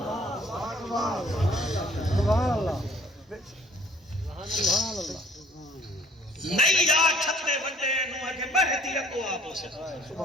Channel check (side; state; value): both; normal; correlation 0.56